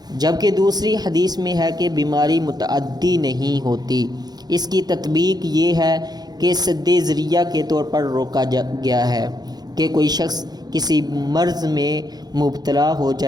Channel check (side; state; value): left; late; 0.19 ms